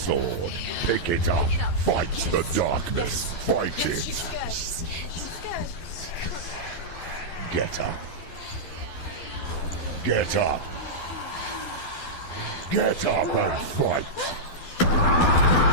Pick it up. Fight the darkness. Fight it. Get up. Get up. Get up and fight.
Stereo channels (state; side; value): late; right; 12 ms